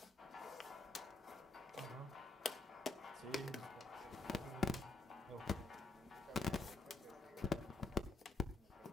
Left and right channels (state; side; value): quieter; right; 3.7 dB